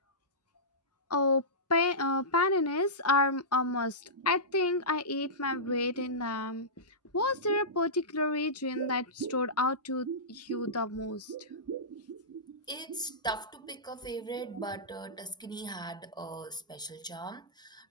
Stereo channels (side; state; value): both; normal; correlation -0.17